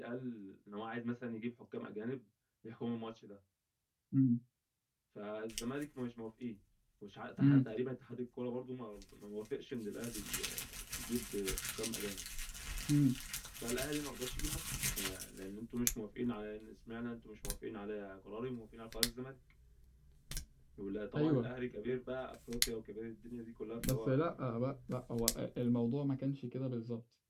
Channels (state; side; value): identical; both; correlation 1.00